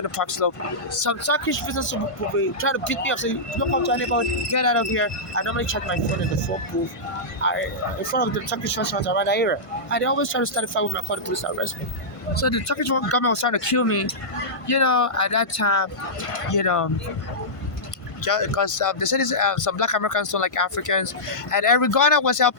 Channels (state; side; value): late; right; 1.5 ms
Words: the Park Slope, some Turkish visitors will be trying to beat me up, saying, "Don't come to anybody, get out of here." I normally check my phone in the phone booth in front of the Turkish restaurants around that area. And they always try to start a fight with my car, the police to arrest me. So the Turkish government was trying to kill me, at that time, because they said some black Americans don't like Africans, and Eric Garner was